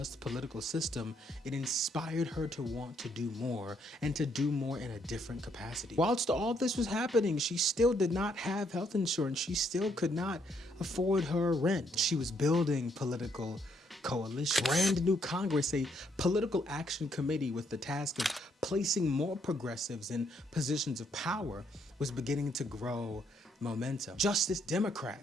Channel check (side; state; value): both; normal; correlation 0.72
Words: political system, it inspired her to want to do more, and to do more in a different capacity. Whilst all this was happening, she still did not have health insurance. She still could not afford her rent. She was building political coalition. Brand new Congress, a political action committee with the task of placing more progressives in positions of power, was beginning to grow momentum. Justice